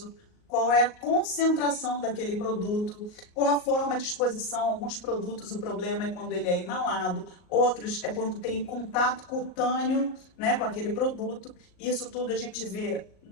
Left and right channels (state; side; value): late; right; 38 ms